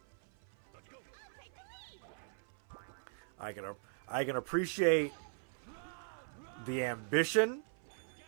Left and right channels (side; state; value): left; silent; 51 dB below the other